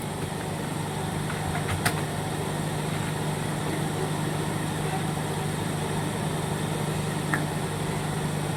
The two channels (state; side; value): identical; both; correlation 1.00